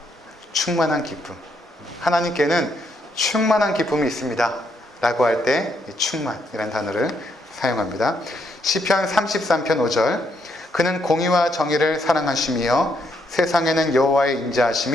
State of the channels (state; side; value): normal; both; correlation 0.75